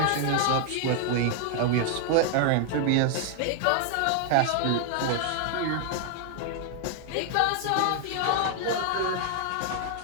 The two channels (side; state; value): both; different; correlation 0.00